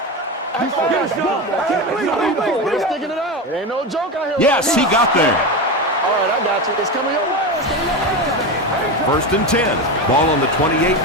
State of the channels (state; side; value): normal; both; correlation 0.19